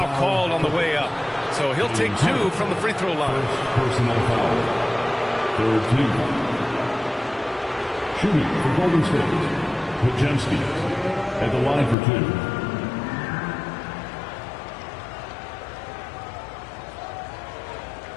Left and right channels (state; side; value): drops out; right; at 12.0 s